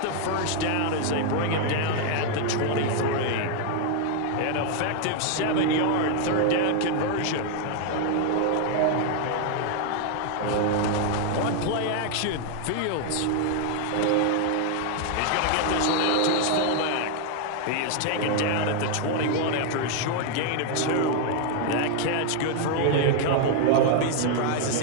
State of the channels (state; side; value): different; both; correlation 0.00